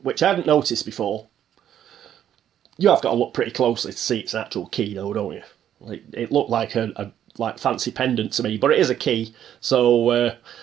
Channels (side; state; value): left; quieter; 10.4 dB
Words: I hadn't noticed before. You have got to look pretty closely to see it's an actual key though, don't you? Like, it looked like a fancy pendant to me, but it is a key, so